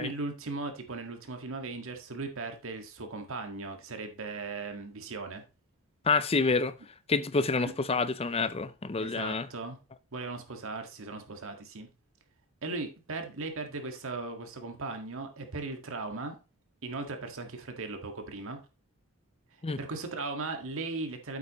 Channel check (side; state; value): both; normal; correlation 0.10